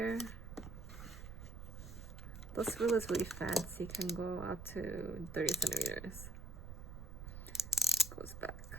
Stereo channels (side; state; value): right; noise; rumble, 10 dB below the sound